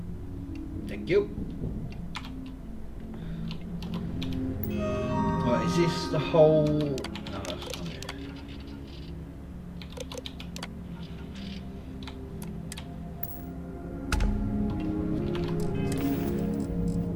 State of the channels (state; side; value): identical; both; correlation 1.00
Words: Thank you. Right, is this the whole... No, that's not it.